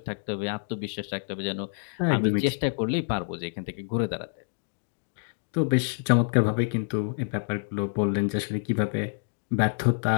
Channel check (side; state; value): right; silent; 60 dB below the other